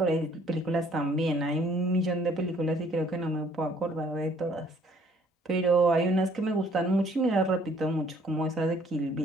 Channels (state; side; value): normal; both; correlation 0.60